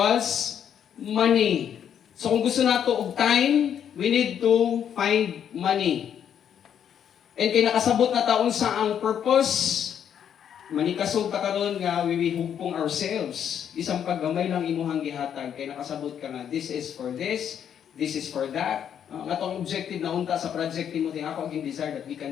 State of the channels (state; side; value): quieter; right; 8.9 dB